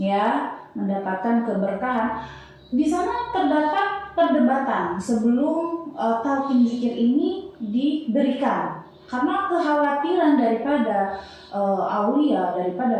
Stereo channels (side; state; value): both; identical; correlation 1.00